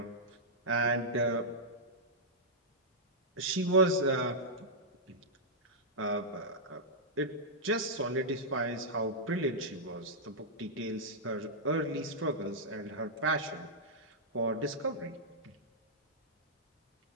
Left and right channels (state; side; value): normal; both; correlation -0.10